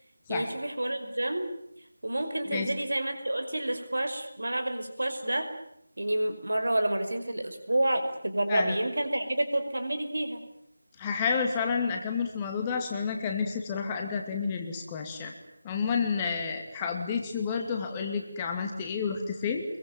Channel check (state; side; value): inverted; both; correlation -0.85